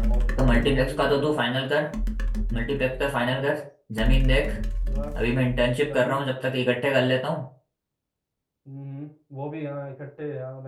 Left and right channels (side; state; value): both; identical; correlation 1.00